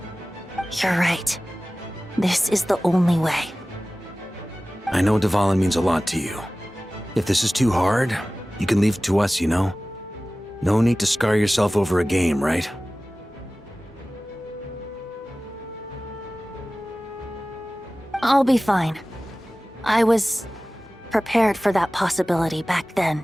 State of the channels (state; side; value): normal; both; correlation 0.97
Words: You're right. This is the only way. I know Dvalin means a lot to you. If this is too hard, you can leave it to us, you know? No need to scar yourself over a game, right? I'll be fine. I was prepared for that possibility back then,